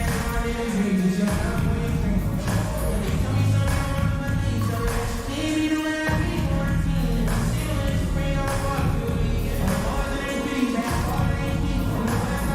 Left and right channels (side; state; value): both; identical; correlation 1.00